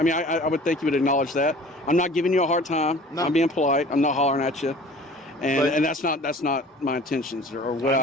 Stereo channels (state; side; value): normal; both; correlation 0.46